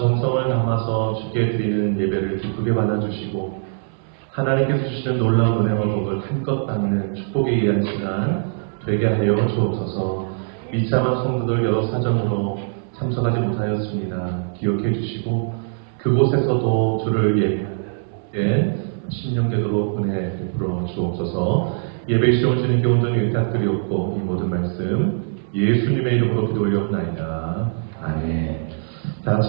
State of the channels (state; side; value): silent; left; 57 dB below the other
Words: 담아서 주께 드리는 예배를 기쁘게 받아주시고 하나님께서 주시는 놀라운 은혜와 복을 한껏 받는 축복에 의한 시간 되게 하여 주옵소서. 미참한 성도들 여러 사정으로 참석하지 못하였습니다. 기억해 주시고 그곳에서도 주를 예배하는 신령되도록 은혜 베풀어 주옵소서. 예배 시험 주님께 온전히 부탁드리옵고 이 모든 말씀 예수님의 이름으로 기도 올렸나이다. 아멘. 다